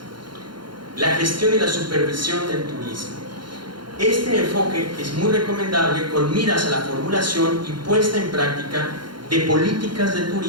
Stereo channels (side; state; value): left; late; 0.72 ms